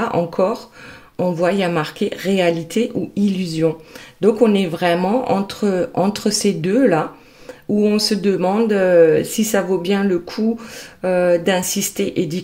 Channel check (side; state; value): both; identical; correlation 1.00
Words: encore, on voit, il y a marqué réalité ou illusion. Donc, on est vraiment entre ces deux-là, où on se demande si ça vaut bien le coup d'insister et d'y